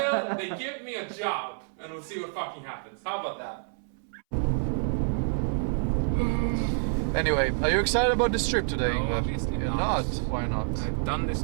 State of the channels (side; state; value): left; silent; 59 dB below the other